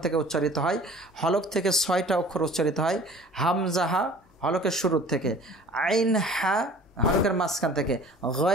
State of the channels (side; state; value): both; normal; correlation 0.47